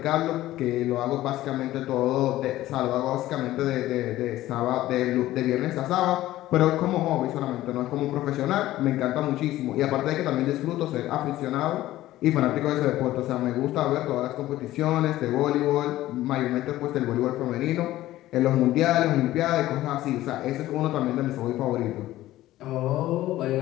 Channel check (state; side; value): quieter; right; 15.3 dB